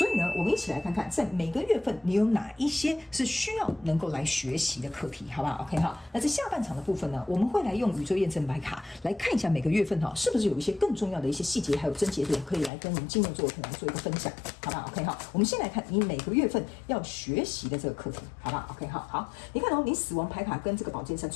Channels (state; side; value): drops out; right; at 12.7 s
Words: 以呢，我们一起来看看，在每个月份你有哪一些是需要能够来学习的课题，好不好 ？OK 好，那在下半场的部分呢，我们会来用宇宙验证牌卡来看一下每个月份是不是有一些更重要的一些细节还有症结点，可以来跟我们金牛座的朋友做一个分享，好不好 ？OK 好，我们先来看你每个月份要学习的这个课题，好不好 ？OK 好。好，你看哦，你死亡牌卡跟这个宝剑三